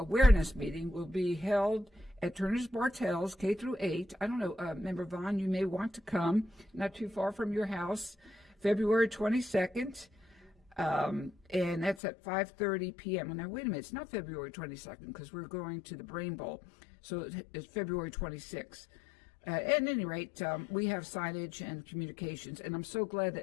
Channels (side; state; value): right; drops out; at 12.0 s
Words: meeting will be held at Turner's Bartels, K through 8. I don't know, Member Vaughn, you may want to come, not too far from your house, February 22nd, and that's at 5:30 p.m. Now, wait a minute, it's not February 22nd because we're going to the Brain Bowl, so it's February 26th. At any rate, we have signage and communications, and I'm so glad